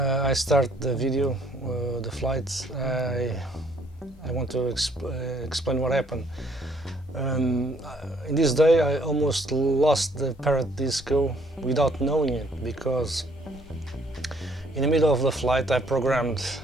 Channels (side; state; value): both; normal; correlation 0.64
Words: I start the video, the flight, I want to explain what happened. In this day I almost lost the Parrot Disco without knowing it, because in the middle of the flight I programmed